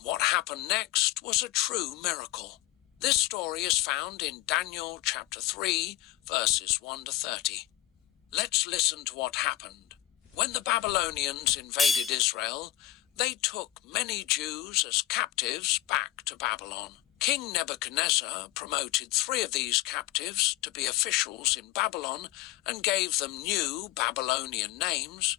what happened next was a true miracle. This story is found in Daniel chapter 3, verses 1 to 30. Let's listen to what happened. When the Babylonians invaded Israel, they took many Jews as captives back to Babylon. King Nebuchadnezzar promoted 3 of these captives to be officials in Babylon and gave them new Babylonian names,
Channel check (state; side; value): quieter; right; 15.0 dB